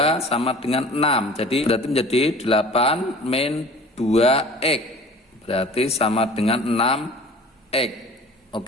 sama dengan 6. Jadi berarti menjadi 8 min 2X. Berarti sama dengan 6X.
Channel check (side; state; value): both; normal; correlation 0.44